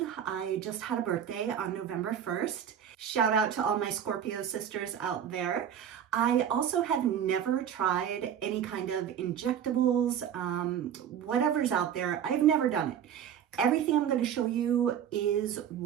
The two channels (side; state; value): left; quieter; 9.1 dB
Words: I just had a birthday on November 1st. Shout out to all my Scorpio sisters out there. I also have never tried any kind of injectables, whatever's out there. I've never done it. Everything I'm going to show you is